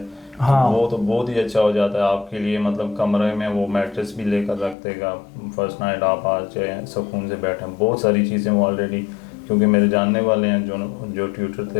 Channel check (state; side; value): drops out; right; at 4.8 s